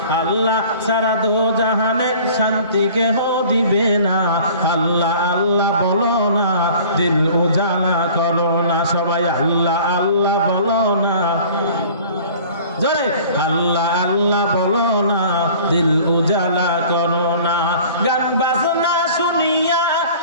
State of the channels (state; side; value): inverted; both; correlation -0.47